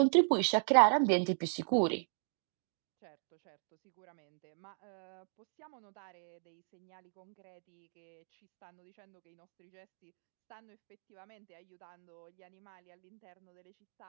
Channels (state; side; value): silent; left; digital silence